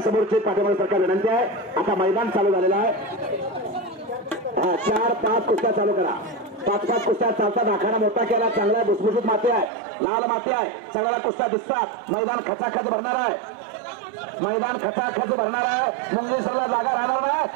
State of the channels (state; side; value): drops out; left; at 9.7 s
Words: समोरची पाठीमागे सरकार विनंती आहे. आता मैदान चालू झालेलं आहे. 4-5 कुस्त्या चालू करा. 5-5 कुस्त्या चालतात. आखाडा मोठा केला, चांगला भुसभुशीत माती आहे, लाल माती आहे, सगळ्या कुस्त्या दिसतात. मैदान खचाखच भरणार आहे. मैदान खचाखच भरणार आहे. मुंगेश्वरला जागा राहणार